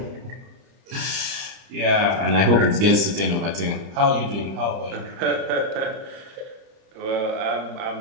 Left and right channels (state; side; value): late; left; 30 ms